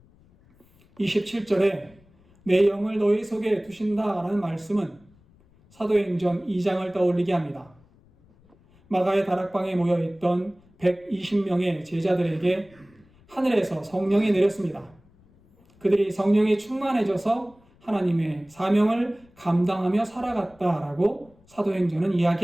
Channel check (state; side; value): noise; left; rumble, 30 dB below the sound